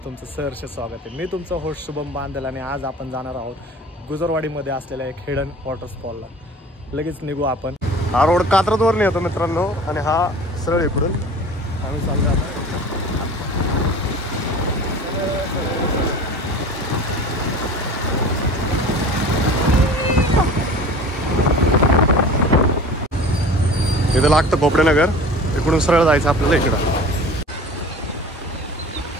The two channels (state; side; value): normal; both; correlation 0.40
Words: तुमचं सहर्ष स्वागत आहे. मी तुमचा होस्ट शुभम बांदल आणि आज आपण जाणार आहोत गुजरवाडीमध्ये असलेल्या एक हिडन वॉटरफॉलला. लगेच निघू आपण. हा रोड कात्रजवरून येतो मित्रांनो आणि हा सरळ इकडून आम्ही चाललो आता. इथं लागतं भोपडेनगर, इकडून सरळ जायचं आपल्याला इकडं.